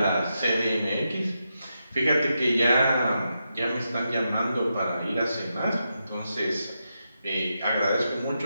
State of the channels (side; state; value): both; inverted; correlation -0.86